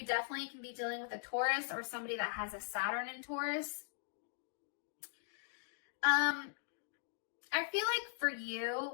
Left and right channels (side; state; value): right; silent; digital silence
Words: definitely can be dealing with a Taurus or somebody that has a Saturn in Taurus. I feel like for